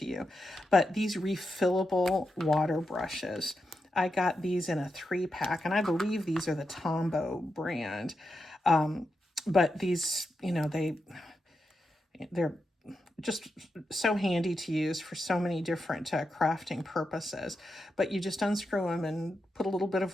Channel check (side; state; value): both; normal; correlation 0.87